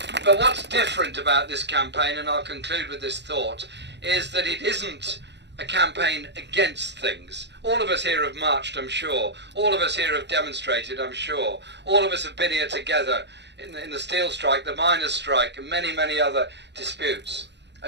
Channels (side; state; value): left; late; 0.51 ms